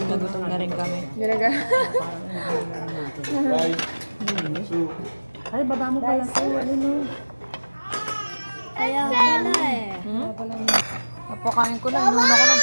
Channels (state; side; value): inverted; both; correlation -1.00